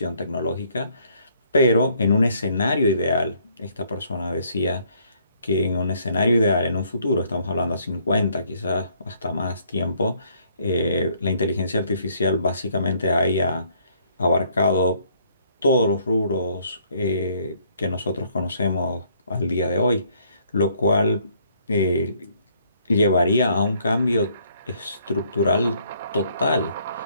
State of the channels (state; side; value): inverted; both; correlation -0.65